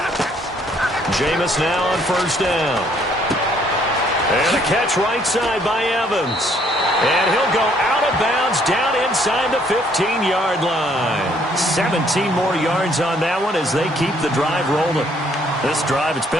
Jameis now on first down. And a catch right side by Evans. And he'll go out of bounds down inside the 15-yard line. 17 more yards on that one as they keep the drive rolling. This drive, it's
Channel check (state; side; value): normal; both; correlation 0.65